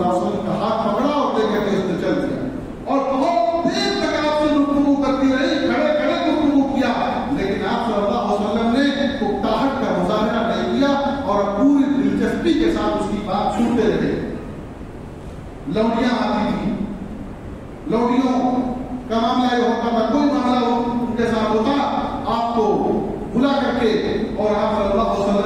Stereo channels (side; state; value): both; identical; correlation 1.00